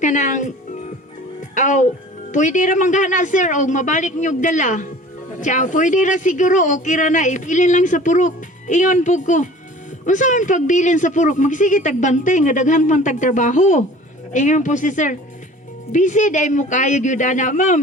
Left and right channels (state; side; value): normal; both; correlation 0.45